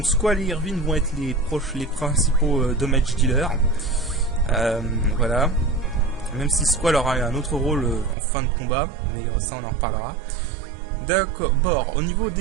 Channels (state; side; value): drops out; left; at 8.2 s